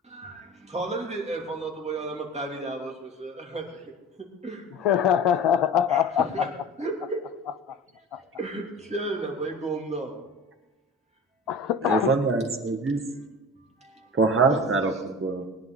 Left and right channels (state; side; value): normal; both; correlation 0.36